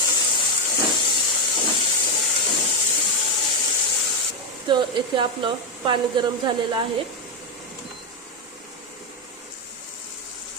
तर येथे आपलं पाणी गरम झालेलं आहे.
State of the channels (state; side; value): normal; both; correlation 0.05